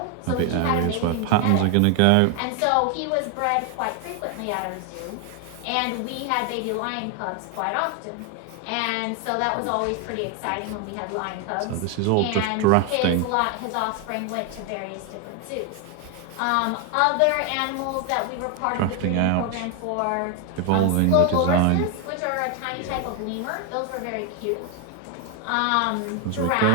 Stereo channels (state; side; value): different; both; correlation 0.01